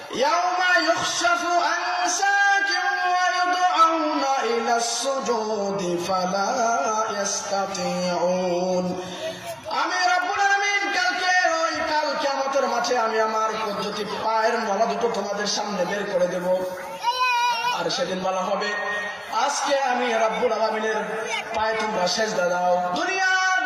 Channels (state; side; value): identical; both; correlation 1.00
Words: ইয়াউমা ইউখশাফু আন সাকিন ওয়া ইউদআউনা ইলাস সুজুদি ফালা ইস্তাতিউন। আমি রাব্বুল আলামিন কাল কিয়ামতের মাঠে আমি আমার পদ্ধতি পায়ের নলা দুটো তোমাদের সামনে বের করে দেব। আর সেদিন বলা হবে, আজকে আমি রাব্বুল আলামিনের পায়ে তোমরা সেজদা দাও। দুনিয়ার